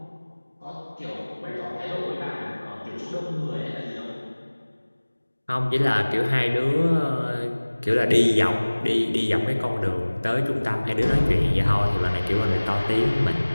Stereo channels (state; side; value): inverted; both; correlation -1.00